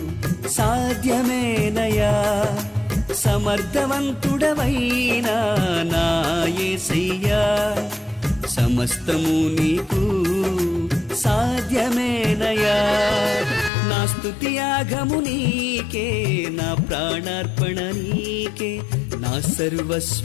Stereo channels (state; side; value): drops out; right; at 13.7 s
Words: సాధ్యమేనయా సమర్థవంతుడవైనా నా యేసయ్యా సమస్తము నీకు సాధ్యమేనయా నా స్తుతి యాగము నీకే నా ప్రాణార్పణ నీకే నా